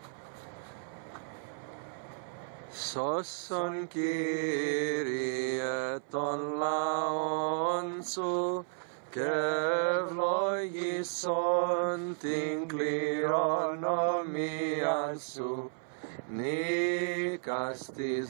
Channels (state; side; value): silent; left; 56 dB below the other